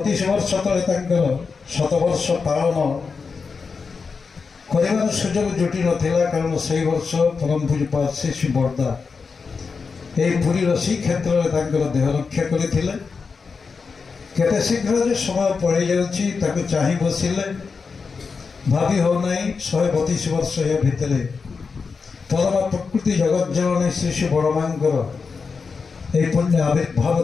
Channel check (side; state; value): right; quieter; 5.0 dB